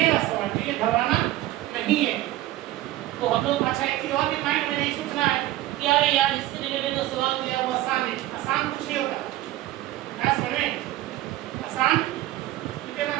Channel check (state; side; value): quieter; left; 15.6 dB